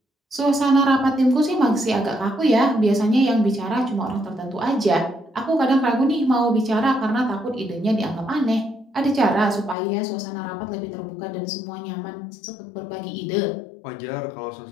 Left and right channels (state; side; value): drops out; right; at 9.8 s